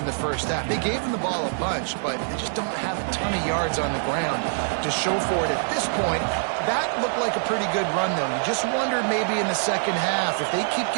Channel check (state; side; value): silent; left; 62 dB below the other